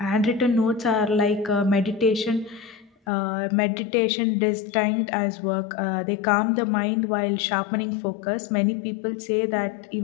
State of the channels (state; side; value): drops out; right; at 2.9 s